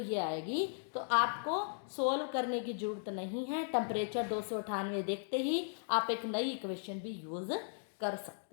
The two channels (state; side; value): silent; right; digital silence